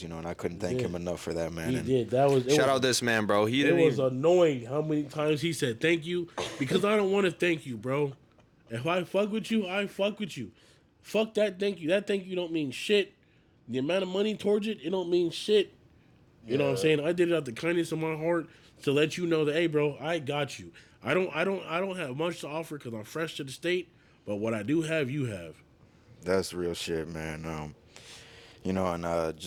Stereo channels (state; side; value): identical; both; correlation 1.00